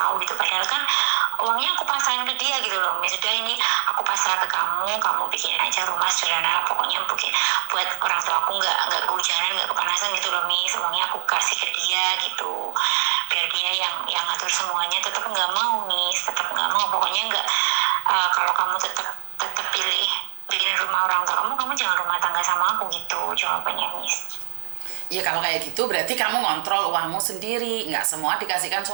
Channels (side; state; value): left; silent; digital silence